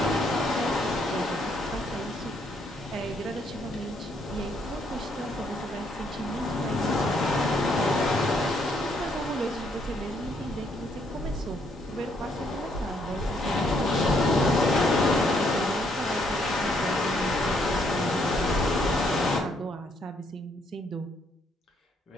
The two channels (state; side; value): normal; both; correlation 0.71